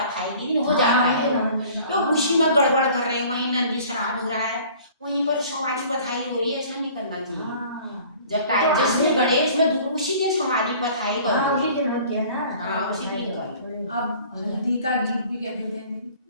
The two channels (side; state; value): both; inverted; correlation -0.49